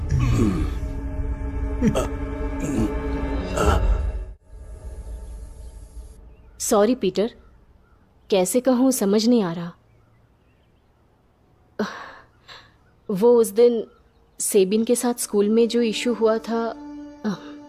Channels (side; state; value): both; identical; correlation 1.00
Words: सॉरी पीटर, कैसे कहूँ समझ नहीं आ रहा। वो उस दिन सेबिन के साथ स्कूल में जो इशू हुआ था,